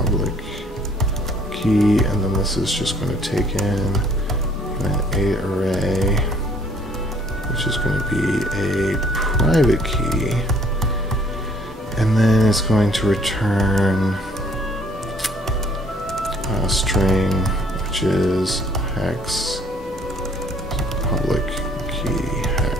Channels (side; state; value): both; normal; correlation 0.60